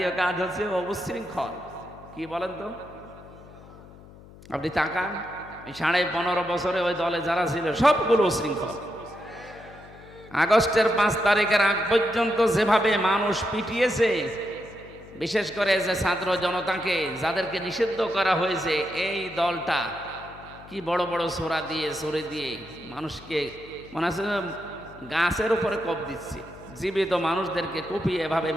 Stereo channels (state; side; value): noise; left; hum, 20 dB below the sound